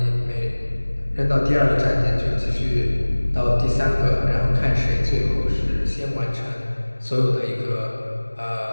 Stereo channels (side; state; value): both; inverted; correlation -1.00